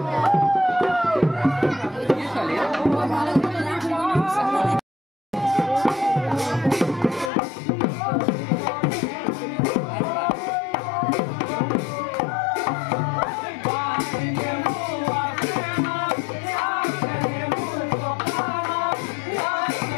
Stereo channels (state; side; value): drops out; right; at 7.3 s